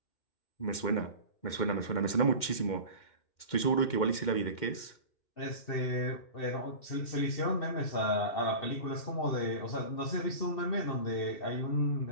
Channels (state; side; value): late; right; 2.1 ms